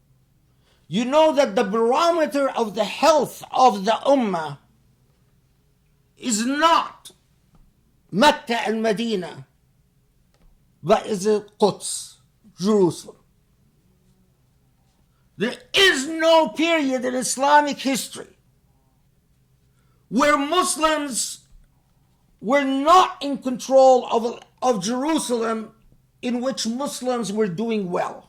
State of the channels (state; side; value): identical; both; correlation 1.00